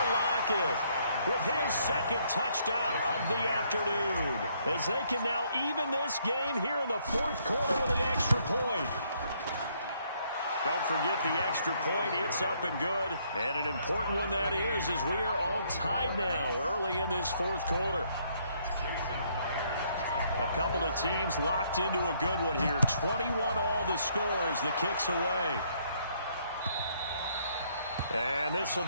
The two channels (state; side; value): inverted; both; correlation -0.69